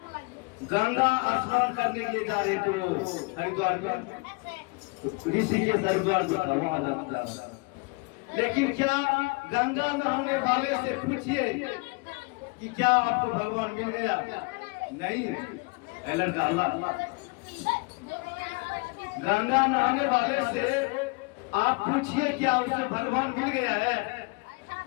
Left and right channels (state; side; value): quieter; right; 29.6 dB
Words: गंगा स्नान करने के लिए जा रहे थे, वो हरिद्वार ऋषिकेश हरिद्वार जो था वहां जाता। लेकिन क्या गंगा नहाने वाले से पूछिए कि क्या आपको भगवान मिल गया? नहीं, लड़का अल्लाह। गंगा नहाने वाले से आप पूछिए क्या उसे भगवान मिल गया है?